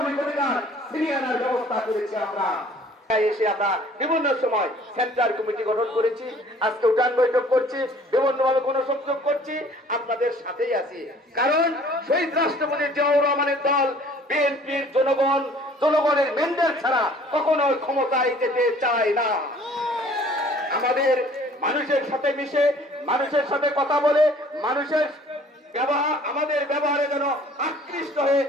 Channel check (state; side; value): normal; both; correlation 0.53